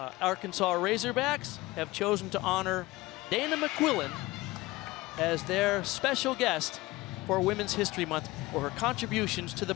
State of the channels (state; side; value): quieter; right; 20.1 dB